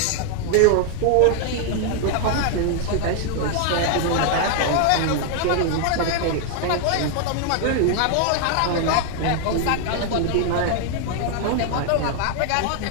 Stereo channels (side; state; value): both; different; correlation 0.00